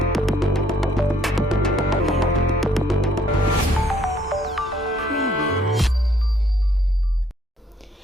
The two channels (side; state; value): both; normal; correlation 0.66